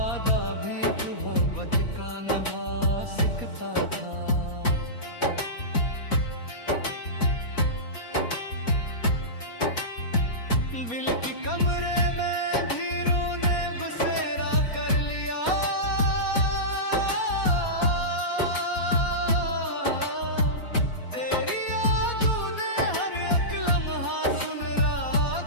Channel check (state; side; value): late; right; 4.2 ms